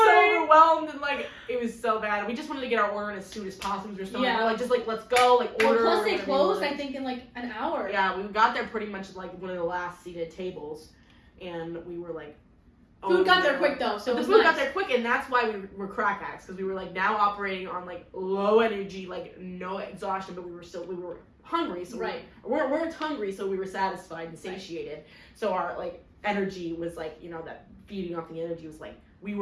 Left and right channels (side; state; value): both; identical; correlation 1.00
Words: so overwhelmed and like it was so bad. We just wanted to get our order in as soon as possible. We were so we're like, just like let's go, like order. Well, plus they closed, I think, in like an hour. Yeah, we got there pretty much like one of the last seated tables, and we were like. Food got there quick though, so the food got there quick, and that's why we were crack addicts, because we were like now operating on like low energy, like no exhaustion, but we were hungry, so we weren't hungry, so we were satisfied and satiated. Right. So our like energy was like, you know, that feeding off the energy was like we